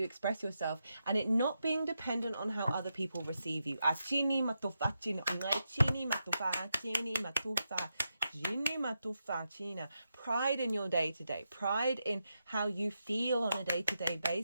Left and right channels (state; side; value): inverted; both; correlation -0.86